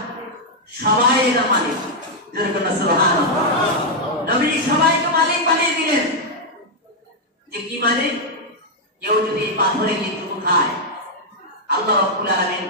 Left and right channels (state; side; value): normal; both; correlation -0.02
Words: সবাই এর মালিক। সুবহানাল্লাহ। নবী সবাইকে মালিক বানিয়ে দিলেন। যে কি মানে, কেউ যদি এই পাথরে গিয়ে চুমু খায়, আল্লাহ রাব্বুল আলামিন